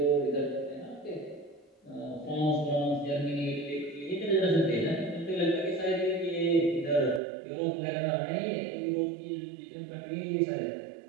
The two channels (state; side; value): drops out; left; at 7.2 s